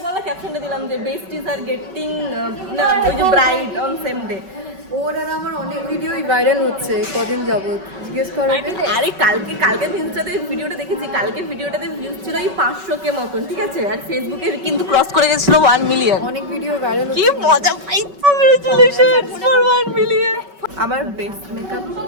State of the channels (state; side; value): late; left; 5.3 ms